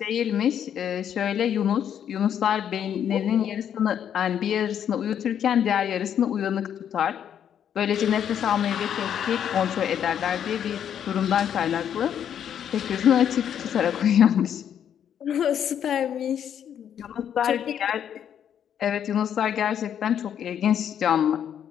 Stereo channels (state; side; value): quieter; right; 9.1 dB